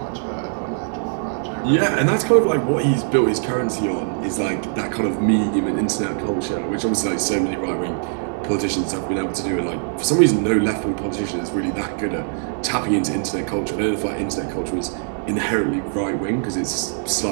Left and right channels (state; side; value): silent; left; digital silence